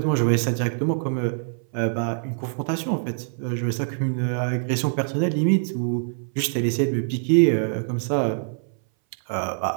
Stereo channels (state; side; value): silent; left; 60 dB below the other